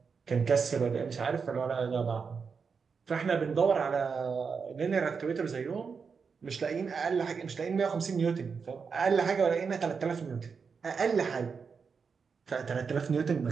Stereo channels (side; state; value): left; quieter; 5.6 dB